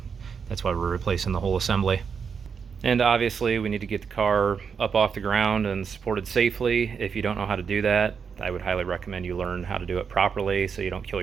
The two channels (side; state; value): left; quieter; 6.3 dB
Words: that's why we're replacing the whole assembly. And obviously we need to get the car up off the ground and supported safely. If you don't know how to do that, I would highly recommend you learn how to do it properly so you don't kill